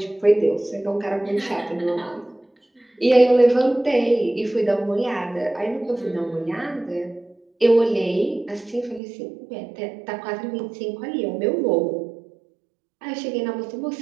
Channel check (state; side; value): drops out; left; at 9.0 s